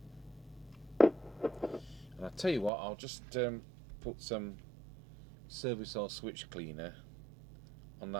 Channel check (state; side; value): drops out; left; at 2.7 s